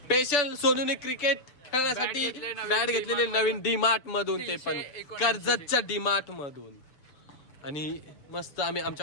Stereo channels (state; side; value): late; right; 6.9 ms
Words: स्पेशल सोनूने क्रिकेट खेळण्यासाठी बॅट घेतलेले नवीन डीमार्ट मधून. ते पण कर्जतच्या डीमार्ट मधून. आणि मस्त आम्ही